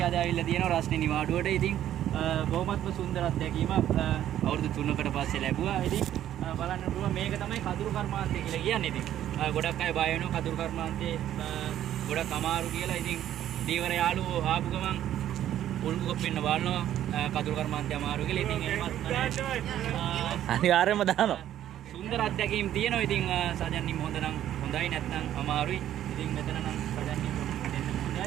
අද ආවිල්ලා තියෙනවා රස්නේ නිවාඩුවට. ඉතින් බොහොමත්ම සුන්දර අත්දැකීමක් අවුරුදු 3කට පස්සේ ලැබුවා. ඉතින් බලන්න පුළුවන් මේක තමයි කඳුරු කර්මාන්තය කියලා කියන්නේ. ඉතින් ගොඩක් අය බය වෙනවා කඳුරු කර්මාන්තේ ගොඩක් අමාරු කියලා. ඉතින් දීවර යාළුවෝ ආපු ගමන් උල්ගු කොප්පෙන්න බලනවා කඳුරු කර්මාන්තය අමාරු කියලා. ඉතින් එහෙමත් අනිවාර්යයෙන්ම දානවා. සුන්දර අත්දැකීම් තියෙනවා. ඉතින් සජන්නිම හොඳ නම් හොඳයි නැත්නම් අමාරුයි. ඉතින් මෙතන නම් සජන්නිම දෙන්න හොඳයි.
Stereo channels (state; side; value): quieter; left; 11.7 dB